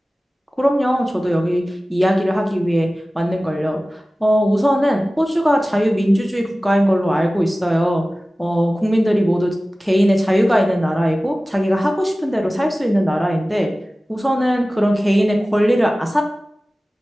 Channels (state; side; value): normal; both; correlation 0.97